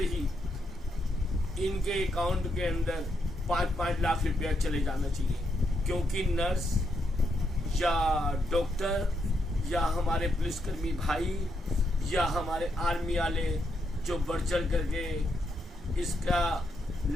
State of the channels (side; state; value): both; normal; correlation 0.80